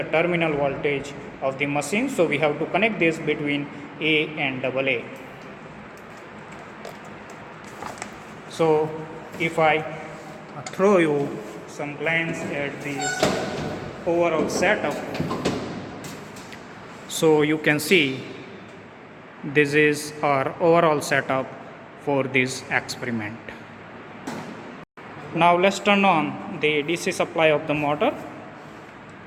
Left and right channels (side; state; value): both; identical; correlation 1.00